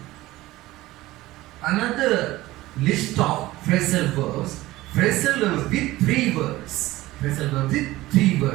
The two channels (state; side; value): quieter; left; 17.7 dB